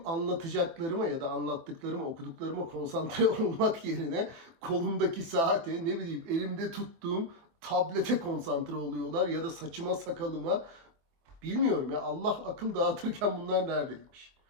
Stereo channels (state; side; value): late; left; 24 ms